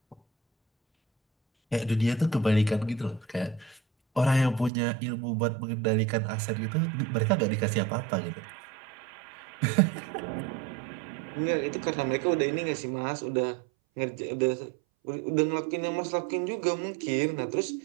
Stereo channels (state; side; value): drops out; left; at 4.7 s